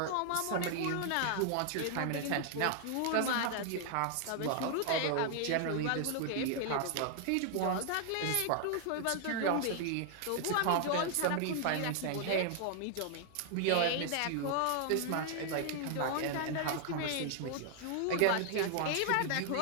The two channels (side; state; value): both; different; correlation 0.00